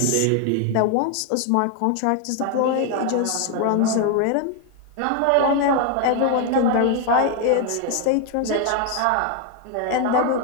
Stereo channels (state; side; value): different; both; correlation 0.01